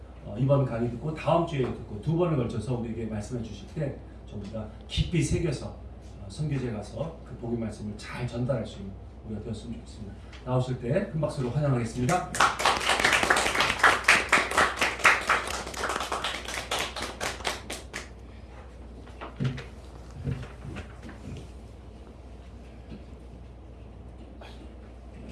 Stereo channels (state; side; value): identical; both; correlation 1.00